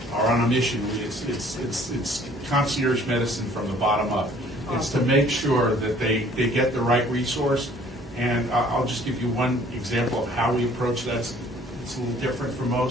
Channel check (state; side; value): normal; both; correlation 0.56